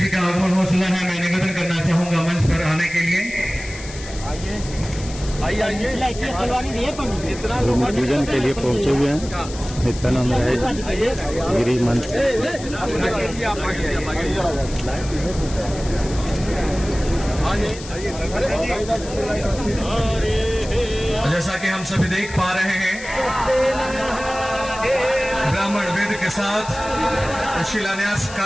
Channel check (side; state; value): left; noise; hiss, 14 dB below the sound